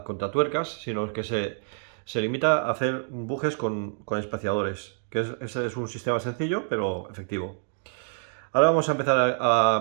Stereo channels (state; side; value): silent; left; digital silence